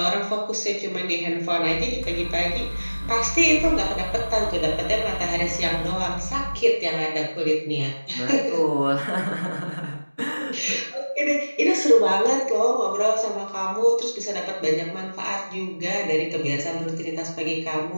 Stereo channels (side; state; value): both; inverted; correlation -1.00